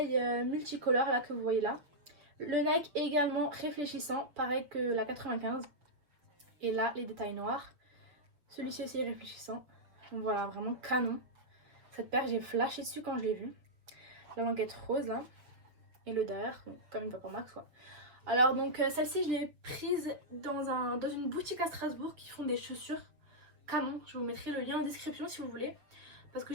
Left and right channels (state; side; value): late; left; 6.9 ms